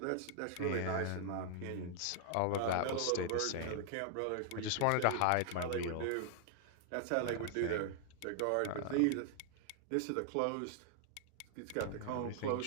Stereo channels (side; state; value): both; different; correlation 0.00